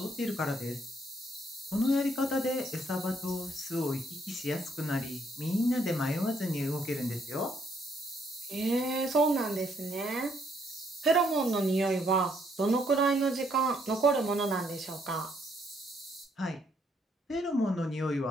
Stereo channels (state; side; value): normal; both; correlation 0.71